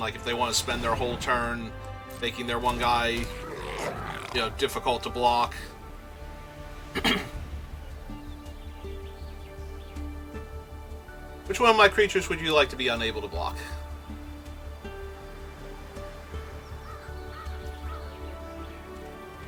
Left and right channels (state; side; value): identical; both; correlation 1.00